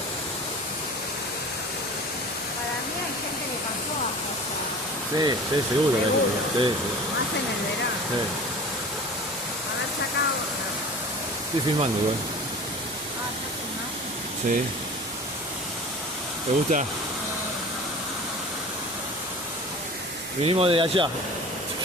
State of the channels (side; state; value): both; normal; correlation 0.39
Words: Para mí hay gente que pasó a pasar. Sí, sí, seguro. Seguro. Sí, sí. Más en el verano. Sí. Haber sacado. Estoy filmando igual. Ah, ¿ya filmaste? Sí. ¿Te gusta? Vinimos de allá.